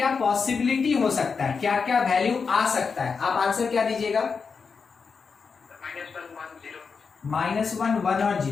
पॉसिबिलिटी हो सकता है, क्या क्या वैल्यू आ सकता है, आप आंसर क्या दीजिएगा? -1, 1 और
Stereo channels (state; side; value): quieter; right; 5.4 dB